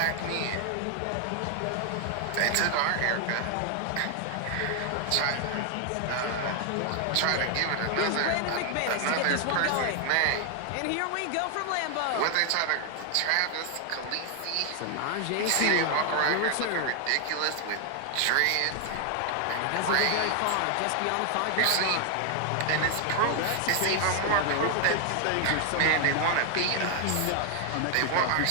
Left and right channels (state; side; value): different; both; correlation 0.00